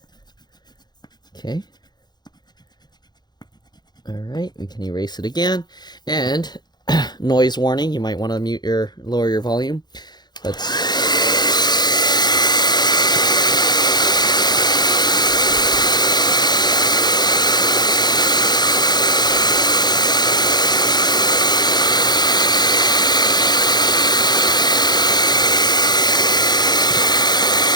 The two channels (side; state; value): right; late; 0.20 ms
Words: Okay. All right, we can erase it again. And noise warning, you might want to lower your volume. Let's